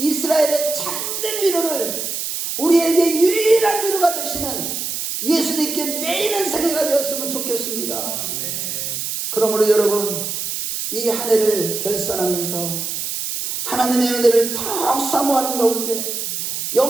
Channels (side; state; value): right; noise; hiss, 4 dB below the sound